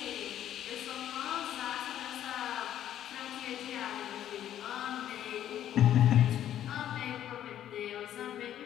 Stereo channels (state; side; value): quieter; right; 11.3 dB